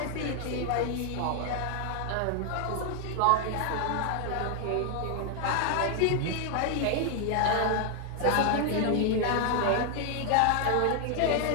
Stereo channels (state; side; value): different; both; correlation 0.00